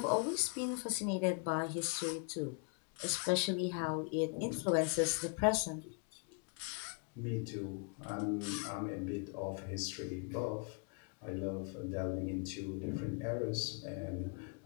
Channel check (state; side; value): quieter; right; 38.9 dB